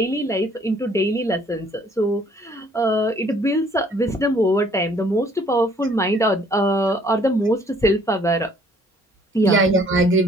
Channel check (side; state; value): both; normal; correlation 0.60